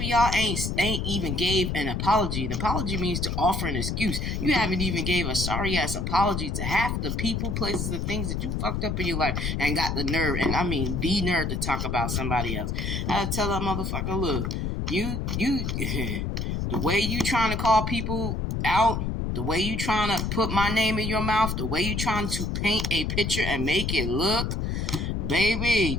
y'all ain't even gave an apology. An apology means to offer an excuse. You haven't even gave a sorry ass apology to half the people, places, and things that you fucked up in your life and got the nerve, and I mean the nerve, to talk about somebody else. I tell that motherfucker, look, you the way you trying to call people out, the way you trying to put my name in your mouth, the way you trying to paint a picture and make it look, baby,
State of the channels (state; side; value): noise; left; rumble, 1 dB below the sound